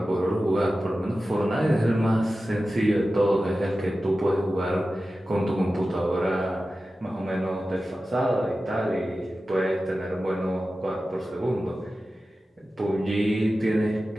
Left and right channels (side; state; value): both; normal; correlation 0.94